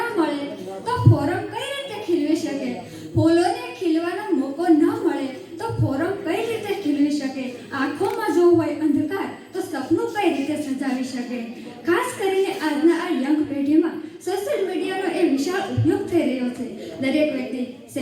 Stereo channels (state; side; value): identical; both; correlation 1.00